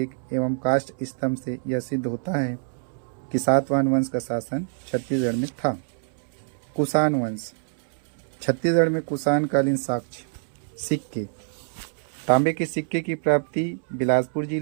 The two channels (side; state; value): left; silent; 61 dB below the other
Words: एवं काष्ठ स्तंभ से यह सिद्ध होता है कि सातवाहन वंश का शासन छत्तीसगढ़ में था। कुषाण वंश छत्तीसगढ़ में कुषाण कालीन साक्ष्य सिक्के। तांबे के सिक्के की प्राप्ति बिलासपुर